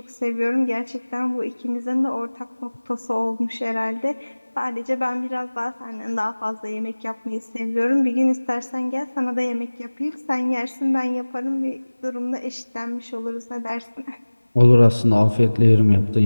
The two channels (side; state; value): both; inverted; correlation -1.00